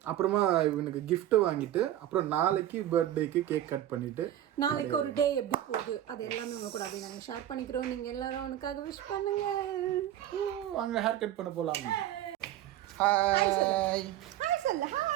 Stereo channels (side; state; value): left; quieter; 12.4 dB